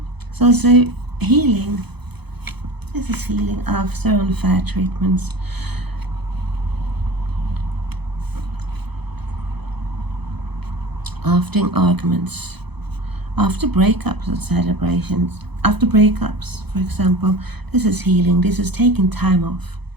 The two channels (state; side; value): late; left; 0.98 ms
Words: it's also healing. This is healing after unfair treatments. After arguments. After breakups and celebrations. After breakups, for example, this is healing. This is taking time off.